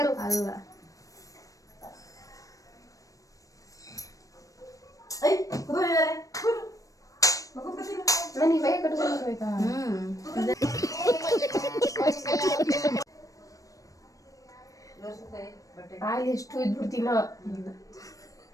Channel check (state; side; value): late; right; 0.16 ms